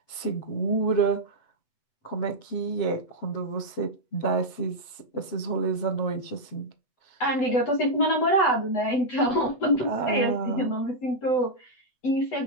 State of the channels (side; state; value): right; late; 8.0 ms